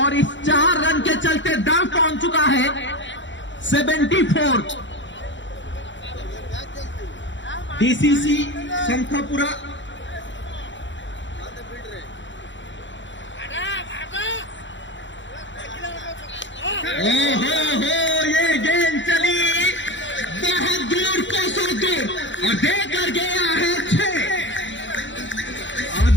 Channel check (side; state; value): right; late; 0.54 ms